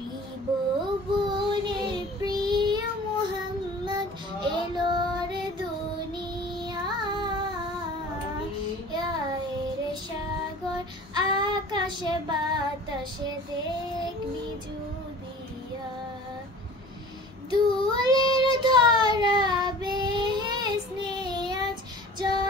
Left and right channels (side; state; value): both; normal; correlation 0.43